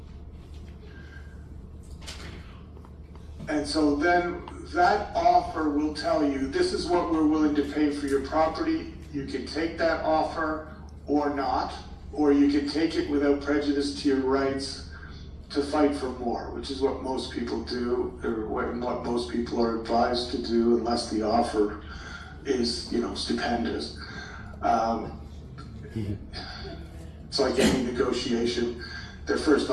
And so then that offer will tell you, this is what we're willing to pay for your property. You can take that offer or not, or you can take it without prejudice to your rights to fight for more, which is what most people do, or what most people are advised to do, unless the offer is, stupendous. It's like any negotiation. Their first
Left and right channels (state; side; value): identical; both; correlation 1.00